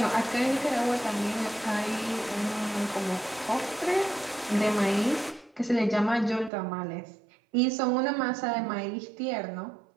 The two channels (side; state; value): left; drops out; at 6.5 s